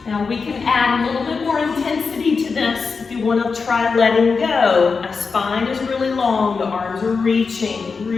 Now we can add a little bit more intensity to this if you want to try letting go. My spine is really long, the arms are reaching,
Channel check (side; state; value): right; quieter; 4.9 dB